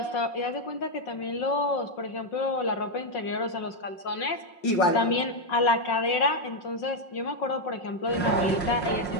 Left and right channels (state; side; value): late; right; 5.5 ms